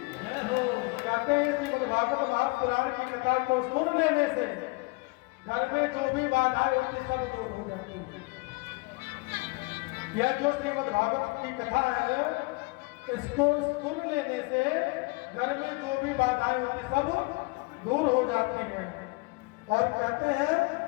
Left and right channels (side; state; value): right; quieter; 26.7 dB